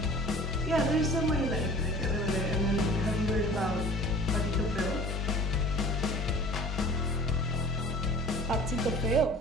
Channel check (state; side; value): normal; both; correlation 0.44